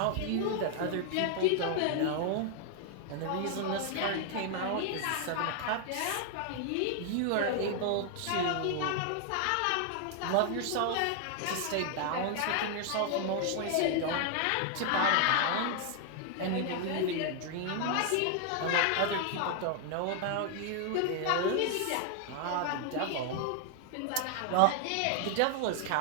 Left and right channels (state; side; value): different; both; correlation 0.00